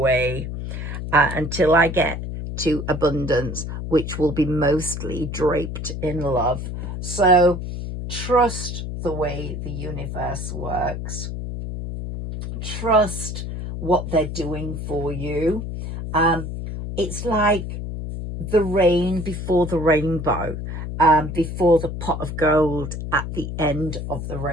until I get to abundance, which will be mostly draped in love. So trust the way the universe works. Trust what they're doing for you. It's like the rain before the rainbow, before the pot of gold at the end of the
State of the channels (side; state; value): left; noise; hum, 6 dB below the sound